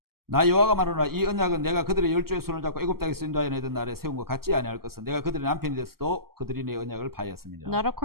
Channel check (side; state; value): left; late; 0.94 ms